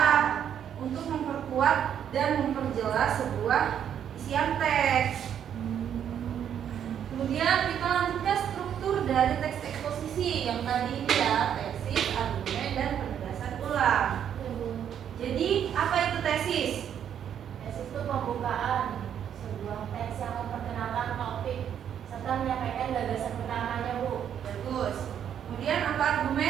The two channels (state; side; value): quieter; left; 9.1 dB